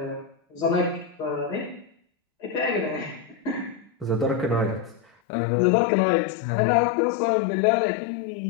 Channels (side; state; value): right; drops out; at 5.1 s